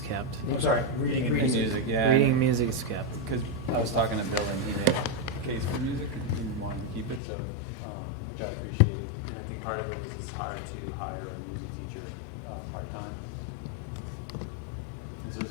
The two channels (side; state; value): right; drops out; at 7.2 s